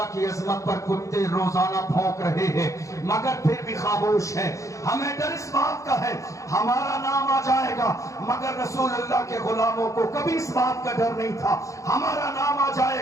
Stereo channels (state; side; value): late; right; 0.15 ms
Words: کی عظمت پر کتے روزانہ بھونک رہے ہیں مگر پھر بھی خاموش ہیں۔ ہمیں ڈر اس بات کا ہے ہمارا نام آ جائے گا، مگر رسول اللہ کے غلاموں کو کبھی اس بات کا ڈر نہیں تھا ہمارا نام آ